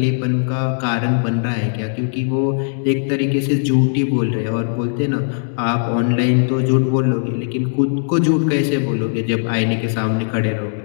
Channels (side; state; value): right; silent; digital silence